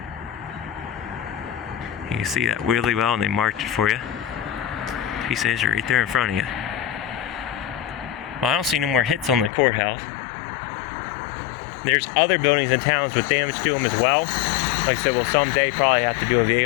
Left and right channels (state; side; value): drops out; right; at 9.5 s